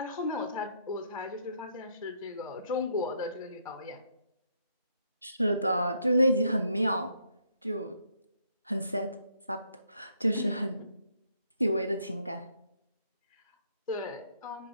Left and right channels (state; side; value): inverted; both; correlation -0.71